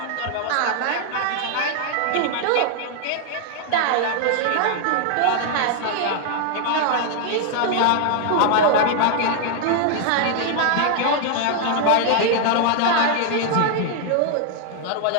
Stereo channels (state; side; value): different; both; correlation 0.00